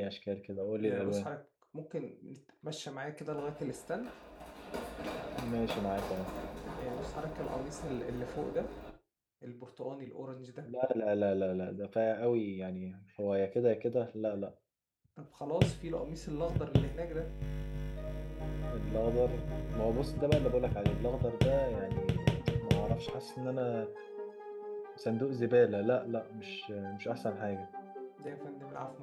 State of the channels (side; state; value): both; identical; correlation 1.00